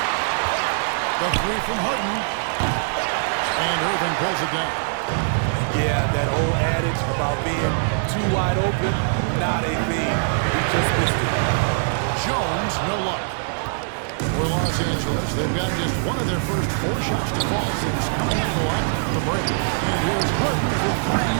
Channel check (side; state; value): left; silent; digital silence